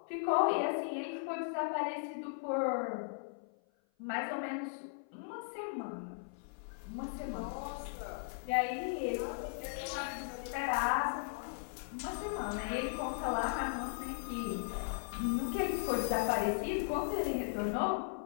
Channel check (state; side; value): silent; right; 53 dB below the other